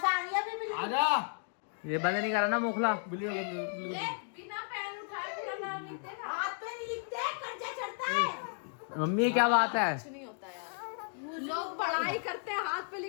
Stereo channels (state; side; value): silent; right; 55 dB below the other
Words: से आ रही है अभी बिल्ली। आजा, ये बंद नहीं करा ना मोखला। बिल्ली बिना पैर उठाए पूरा नाम लिखते हैं, हाथ पे नहीं लिखते, कर्जा चढ़ता है। मम्मी क्या बात है? कुछ नहीं होता यार, लोग बड़ा पढ़ाई करते हैं हाथ पे